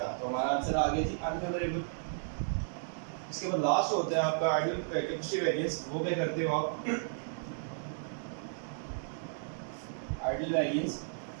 तो हमारा आंसर आ गया थी अनफेवरेबल। इसके बाद लास्ट होता है आपका आइडियल कैपेसिटी वेरिएंस। वो क्या करते हो आप, आइडियल वेरिएंस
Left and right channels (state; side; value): silent; left; digital silence